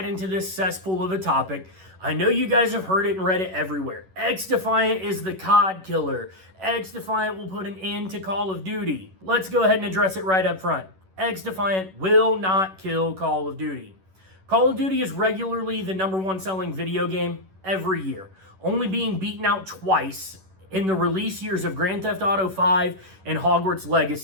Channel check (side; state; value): left; late; 11 ms